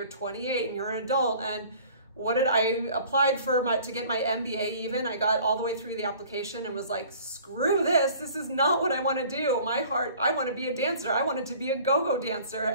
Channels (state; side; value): inverted; both; correlation -0.49